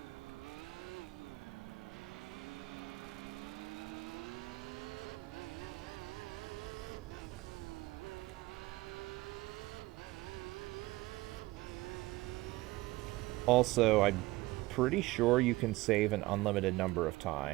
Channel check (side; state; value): left; quieter; 19.7 dB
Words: Also, I'm pretty sure you can save an unlimited number of